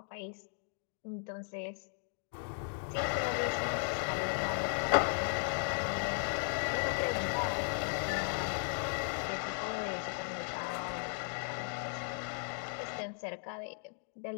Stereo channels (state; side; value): silent; right; 53 dB below the other